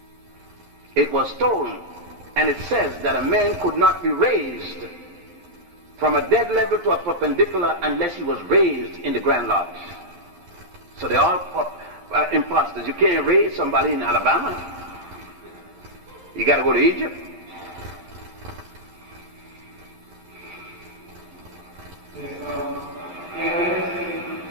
It was stolen. And it says that a man could not be raised from a dead level to a perpendicular unless he was raised in the Grand Lodge. So they're all imposters. You can't raise somebody in Alabama. You got to go to Egypt.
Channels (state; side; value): late; left; 11 ms